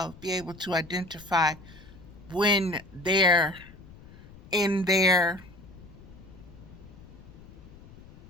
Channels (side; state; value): left; noise; rumble, 20 dB below the sound